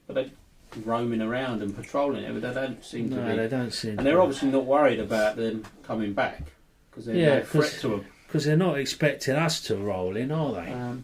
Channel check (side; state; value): both; identical; correlation 1.00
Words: roaming around and patrolling it, but they don't seem to be. they don't seem. And they're obviously not worried about them coming back because they're Yeah, no threat to them. because they're not expecting us to roll in, are they?